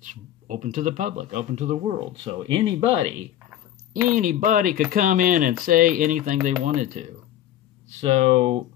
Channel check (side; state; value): right; quieter; 12.0 dB